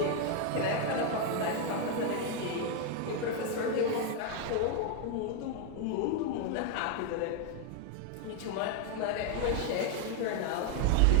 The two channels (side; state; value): both; different; correlation 0.01